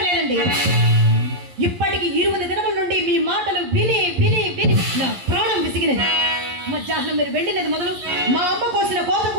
ఇప్పటికి 20 దినముల నుండి మీ మాటలు విని విని విని నా ప్రాణం విసిగినది. మధ్యాహ్నం మీరు వెళ్ళినది మొదలు మా అమ్మ కోసిన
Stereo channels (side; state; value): left; late; 11 ms